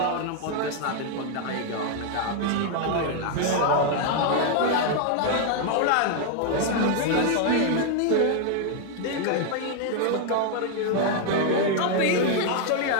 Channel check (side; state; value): both; different; correlation 0.00